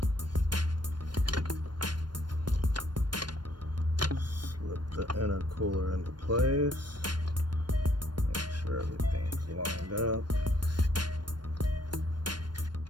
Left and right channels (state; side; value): late; left; 0.71 ms